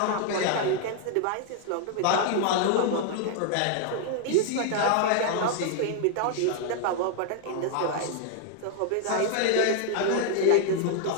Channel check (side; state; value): both; different; correlation 0.00